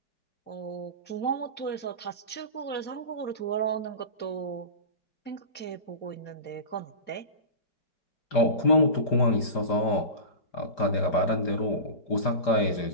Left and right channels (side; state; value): right; late; 5.0 ms